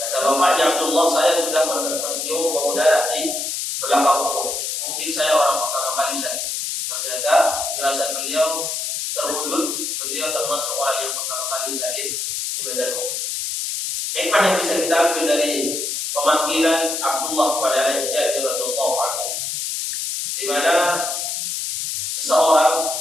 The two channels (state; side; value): noise; left; hiss, 3 dB below the sound